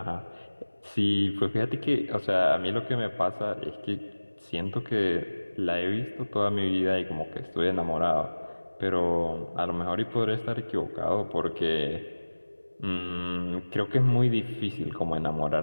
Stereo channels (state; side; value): inverted; both; correlation -1.00